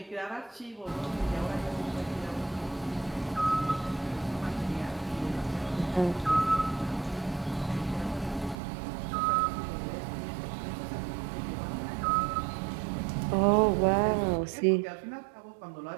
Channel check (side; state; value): left; drops out; at 8.6 s